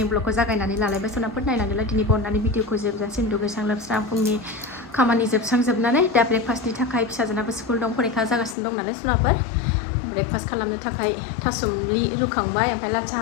ब्लगखौ जागायनानै लालायबाय सनाफोर नायनानैलाय दिनै बननानै भिडिअखौ जोबजासिम दुगैस्रां लोबस्रां फुंनि खामानि जोबस्रांजोबनानै दा ब्रेकफास्टनि थाखाय फिसाजोनाबो स्कुल दं फरिखा जागासिनो दं नालाय सनाफोर ब्रेकफास्ट खालामनो थाखाय थासुमलि रुखांबाय ओमफ्राय लाल साहा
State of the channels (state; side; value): drops out; right; at 8.6 s